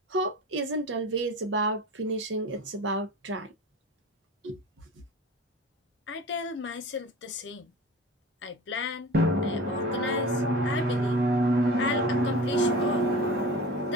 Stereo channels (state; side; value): normal; both; correlation 0.35